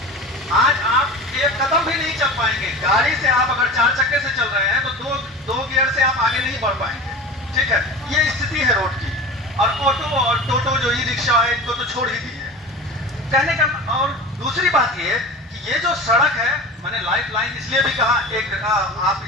आज आप एक कदम भी नहीं चल पाएंगे। गाड़ी से आप अगर 4 चक्के से चल रहे हैं तो दो गियर से आप आगे नहीं बढ़ पाएंगे। ठीक है, ये स्थिति है रोड की। और ऑटो और टोटो जो ई रिक्शा है इनको तो छोड़ ही दी है कहने का। और दूसरी बात ये कि ये जो सड़क है, मैंने लाइफ लाइन इसलिए भी कहा, एक आप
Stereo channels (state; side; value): normal; both; correlation 0.34